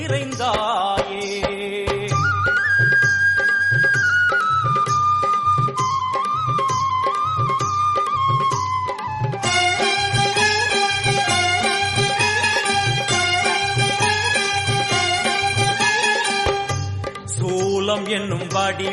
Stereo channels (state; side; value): identical; both; correlation 1.00